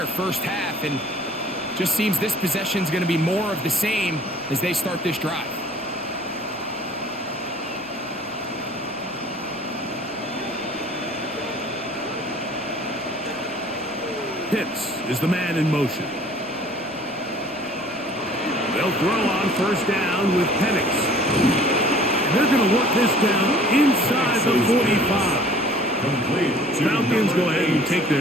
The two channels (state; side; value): noise; left; rumble, 30 dB below the sound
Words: first half. And just seems this possession is going to be more of the same as they start this drive. Pitts is the man in motion. They'll throw on 1st down with Penix. And they're going to work this down inside the 45. Falcons go ahead and take